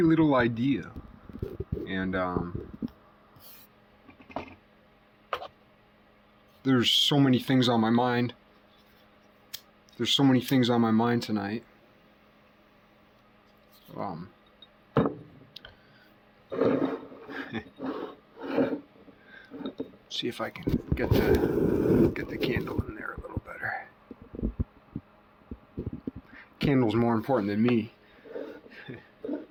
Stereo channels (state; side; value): identical; both; correlation 1.00